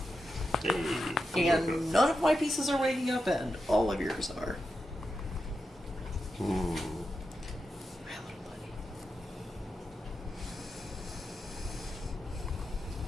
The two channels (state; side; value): normal; both; correlation 0.88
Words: Hey. And none of my pieces are waking up, and all of yours are. Hmm. My little buddy.